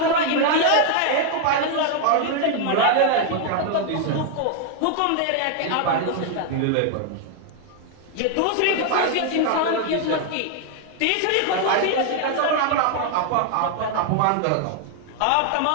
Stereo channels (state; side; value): different; both; correlation 0.00